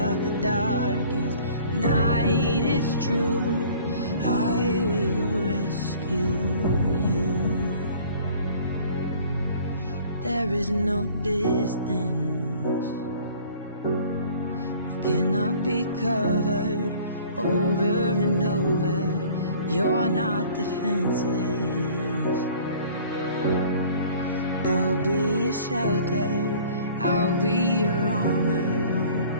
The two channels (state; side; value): inverted; both; correlation -0.50